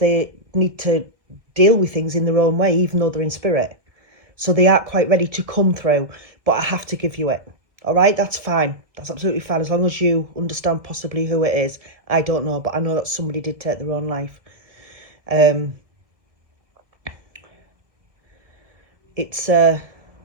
need to deal with things in their own way, even though they're in spirit. So they aren't quite ready to come through, but I have to give you it. All right, that's fine. That's absolutely fine, as long as you understand possibly who it is. I don't know, but I know that somebody did take their own life. It's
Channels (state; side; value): late; left; 1.5 ms